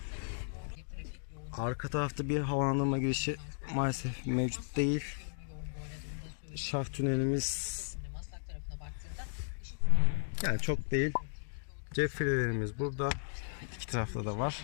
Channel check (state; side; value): silent; right; digital silence